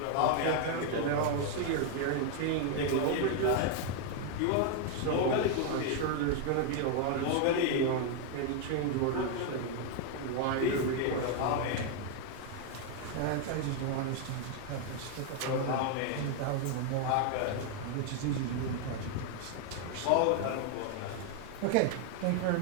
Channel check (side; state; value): both; different; correlation 0.00